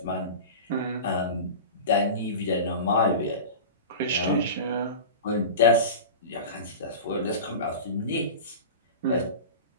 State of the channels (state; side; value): inverted; both; correlation -0.30